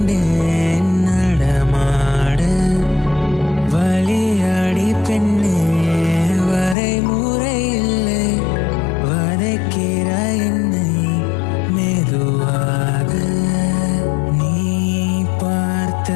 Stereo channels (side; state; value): right; drops out; at 6.8 s